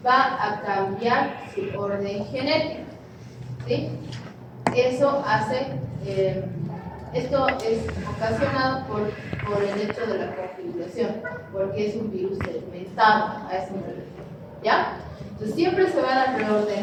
va a cambiar su orden genético, ¿sí? Eso hace, esto es ocasionado por el hecho de la configuración, porque es un virus segmentado, a eso me refiero, ¿ya? Entonces siempre se van a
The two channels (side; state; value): both; identical; correlation 1.00